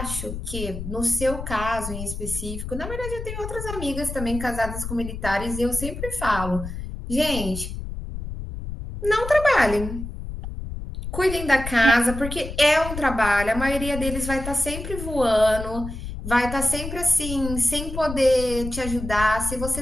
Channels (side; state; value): left; noise; rumble, 8 dB below the sound